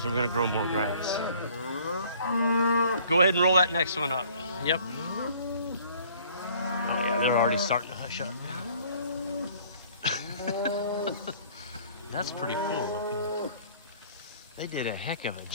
and we're going to grow more grass. Go ahead and roll that next one up. Yep. Oh yeah, they're already starting to hush up now. That's pretty cool looking. They did a heck of a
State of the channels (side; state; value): both; inverted; correlation -0.55